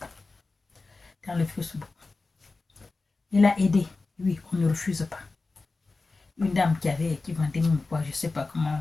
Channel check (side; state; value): right; quieter; 3.6 dB